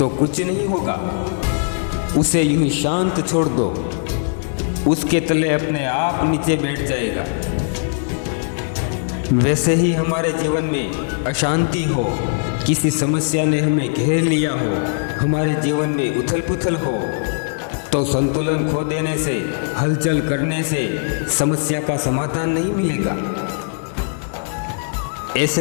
कुछ नहीं होगा। उसे यूं ही शांत छोड़ दो, उसके तले अपने आप नीचे बैठ जाएगा। वैसे ही हमारे जीवन में अशांति हो, किसी समस्या ने हमें घेर लिया हो, हमारे जीवन में उथल पुथल हो, तो संतुलन खो देने से, हलचल करने से समस्या का समाधान नहीं मिलेगा।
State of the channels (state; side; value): silent; right; digital silence